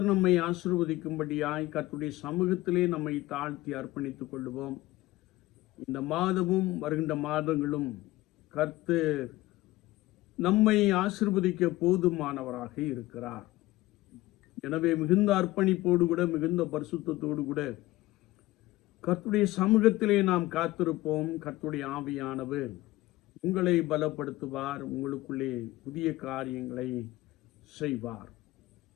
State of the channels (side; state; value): right; quieter; 18.2 dB